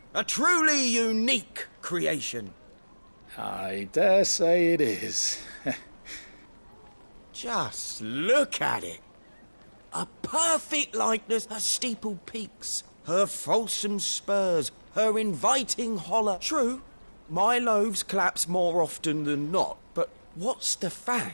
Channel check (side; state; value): both; inverted; correlation -1.00